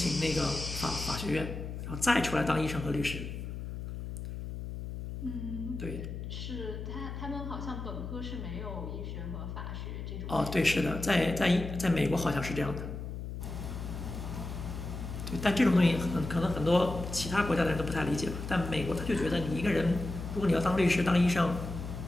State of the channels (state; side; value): noise; left; hum, 7 dB below the sound